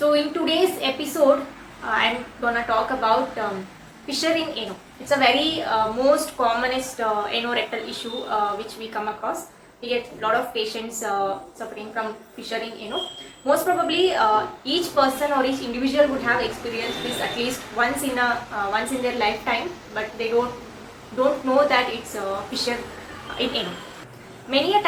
in today's episode, I'm gonna talk about fissure in ano. It's a very most commonest anorectal issue which we come across. We get a lot of patients suffering from fissure in ano. Most probably, each person or each individual would have experienced this at least once in their lifetime, but they don't know that it's fissure in ano. Many a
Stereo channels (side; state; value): both; identical; correlation 1.00